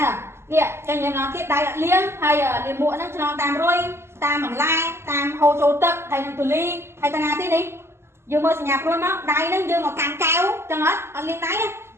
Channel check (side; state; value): left; late; 0.12 ms